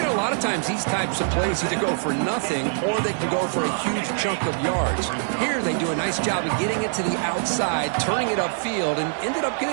know, a lot of times these types of plays either go for nothing or they can go for a huge chunk of yards. Here they do a nice job of getting it to the outside, turning it upfield, and ended up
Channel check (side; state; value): left; silent; digital silence